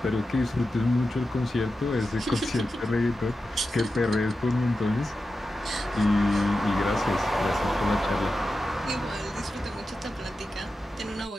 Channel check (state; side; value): normal; both; correlation 0.91